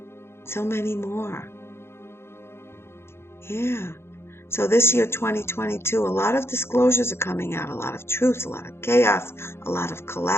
So many more. Yeah. So this year, 2022, a lot of disclosures are coming out, a lot of truths, a lot of chaos, a lot of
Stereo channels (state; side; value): late; right; 0.12 ms